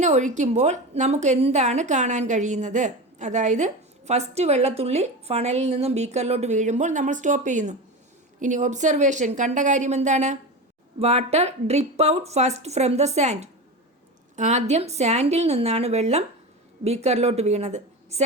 ഒഴിക്കുമ്പോൾ നമുക്ക് എന്താണ് കാണാൻ കഴിയുന്നത്? അതായത് ഫസ്റ്റ് വെള്ളത്തുള്ളി ഫണലിൽ നിന്നും ബീക്കറിലോട്ട് വീഴുമ്പോൾ നമ്മൾ സ്റ്റോപ്പ് ചെയ്യുന്നു. ഇനി ഒബ്സർവേഷൻ, കണ്ട കാര്യം എന്താണ്? Water drip out first from the sand. ആദ്യം സാൻഡിൽ നിന്നാണ് വെള്ളം ബീക്കറിലോട്ട് വീണത്.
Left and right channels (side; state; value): both; normal; correlation 0.25